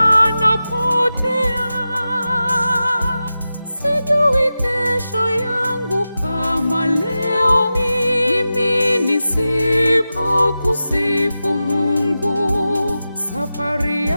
Sijui kesho yangu kama leo mimi nisipokusifu Mungu. Safari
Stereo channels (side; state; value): both; inverted; correlation -0.93